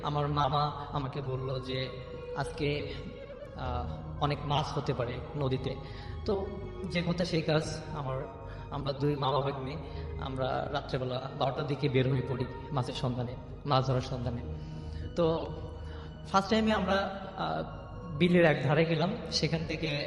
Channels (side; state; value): both; identical; correlation 1.00